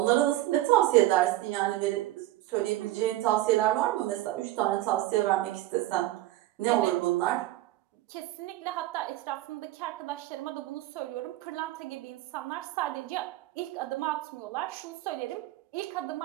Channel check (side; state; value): left; quieter; 15.7 dB